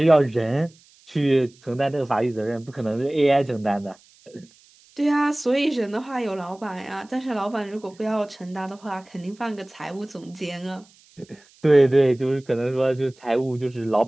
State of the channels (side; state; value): right; noise; hiss, 29 dB below the sound